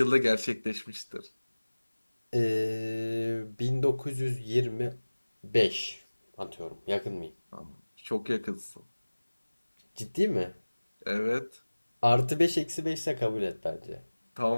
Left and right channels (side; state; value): both; inverted; correlation -1.00